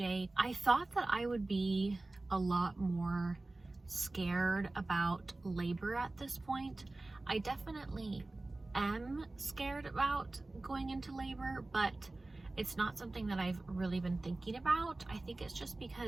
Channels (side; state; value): left; quieter; 3.0 dB